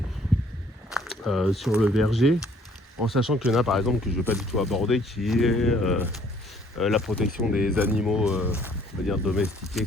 sur le verger, en sachant qu'il y en a, par exemple, que je ne vais pas du tout aborder, qui est la protection des animaux, on va dire domestiqués,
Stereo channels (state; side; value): normal; both; correlation 0.61